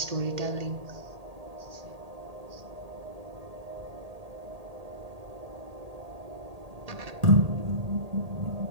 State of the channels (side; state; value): left; late; 1.8 ms